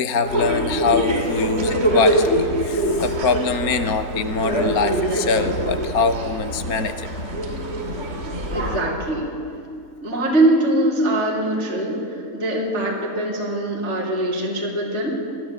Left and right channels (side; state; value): right; late; 4.3 ms